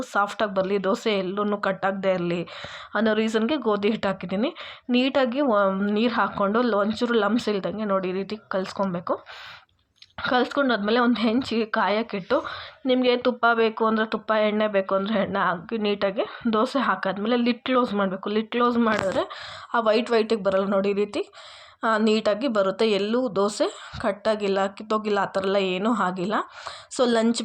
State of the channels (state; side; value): identical; both; correlation 1.00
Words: ಸಾಫ್ಟಾಗಿ ಬರಲಿ, ದೋಸೆ ಎಲ್ಲೂ ಕಟ್ಟಾಗದೇ ಇರಲಿ ಅನ್ನೋ ರೀಸನ್ಗೆ ಗೋಧಿ ಹಿಟ್ಟು ಹಾಕಿದ್ದೀನಿ. ನೀಟಾಗಿ ನೀರು ಹಾಕ್ಕೊಂಡು ಒಂಚೂರು ಲಮ್ಸ್ ಇಲ್ದಂಗೆ ನೋಡಿ ಈ ರೀತಿ ಕಲಿಸ್ಕೊಬೇಕು. ಕಲಿಸ್ಕೊಂಡಾದ್ಮೇಲೆ ಒಂದು ಹೆಂಚಿಗೆ ಕಾಯಕ್ಕಿಟ್ಟು, ನಿಮಗೆ ತುಪ್ಪ ಬೇಕು ಅಂದರೆ ತುಪ್ಪ, ಎಣ್ಣೆ ಬೇಕು ಅಂದರೆ ಎಣ್ಣೆ ಹಾಕಿ ನೀಟಾಗಿ ದೋಸೆ ಹಾಕಾದ್ಮೇಲೆ ಲಿಡ್ ಕ್ಲೋಸ್ ಮಾಡಬೇಕು. ಲಿಡ್ ಕ್ಲೋಸ್ ಮಾಡಿದ್ರೆ ಆ ವೈಟಿಗೆ ಬರಲ್ಲ ನೋಡಿ, ಈ ರೀತಿ ನೀಟಾಗಿ ಬರುತ್ತೆ. ಎಲ್ಲೂ ದೋಸೆ ಕಟ್ಟಾಗಿಲ್ಲ, ಕಿತ್ತೋಗಿಲ್ಲ, ಆ ಥರ ಎಲ್ಲ ಏನೂ ಆಗಿಲ್ಲ. ಸೊ